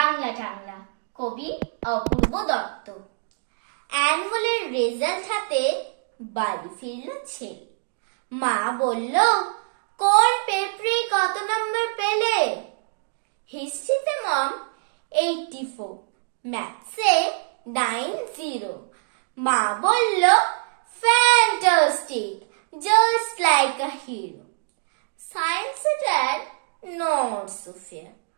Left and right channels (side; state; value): left; silent; digital silence